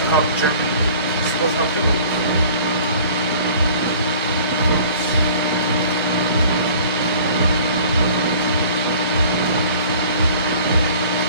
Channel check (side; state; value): both; inverted; correlation -0.48